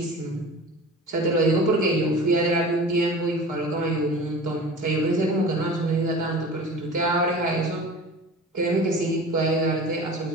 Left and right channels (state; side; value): normal; both; correlation 0.38